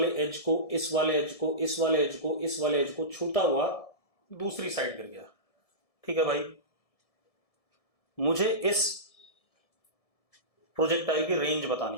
एज को, इस वाले एज को, इस वाले एज को, इस वाले एज को छूता हुआ दूसरी साइड गिर गया। ठीक है भाई, मुझे इस प्रोजेक्टाइल की रेंज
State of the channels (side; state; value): right; late; 1.7 ms